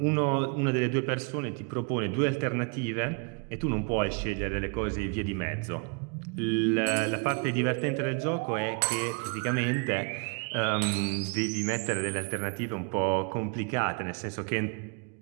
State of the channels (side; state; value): left; quieter; 36.0 dB